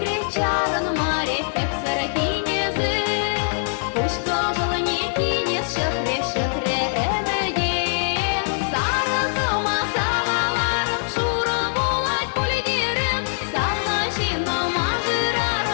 чаран маре, эпсара кинезы, пушка желание кинез, шахре, шахре, эмеде. Сара кыма, салаларым, шура булать пуледерем, сала жина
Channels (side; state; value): right; silent; 64 dB below the other